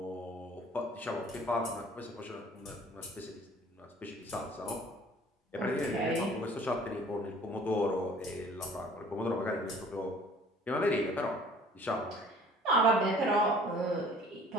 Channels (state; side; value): normal; both; correlation 0.52